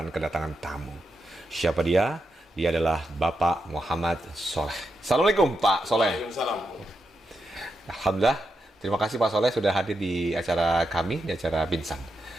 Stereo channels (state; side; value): normal; both; correlation 0.85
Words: kedatangan tamu. Siapa dia? Dia adalah Bapak Muhammad Soleh. Assalamualaikum Pak Soleh. Waalaikumsalam. Alhamdulillah, terima kasih Pak Soleh sudah hadir di acara kami, di acara Binsan.